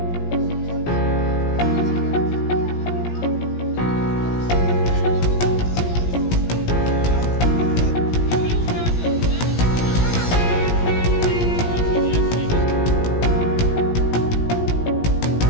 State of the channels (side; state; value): right; late; 17 ms